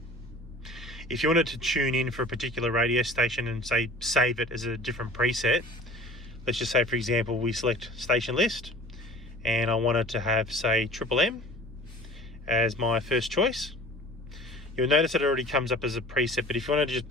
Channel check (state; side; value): normal; both; correlation 0.44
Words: If you wanted to tune in for a particular radio station and say save it as a different preset, let's just say for example we select station list and I wanted to have say Triple M as my first choice. You'll notice that it already comes up as a preset, but if you wanted to just